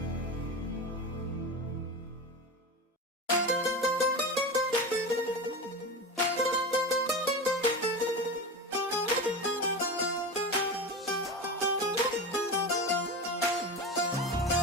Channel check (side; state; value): both; normal; correlation 0.24